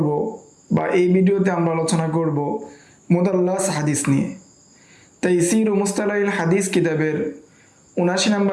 বা এই ভিডিওতে আমরা আলোচনা করব মুদাল্লাস হাদিস নিয়ে। তাইসির ও মুস্তালাহিল হাদিস কিতাবের ৭৯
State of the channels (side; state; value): both; identical; correlation 1.00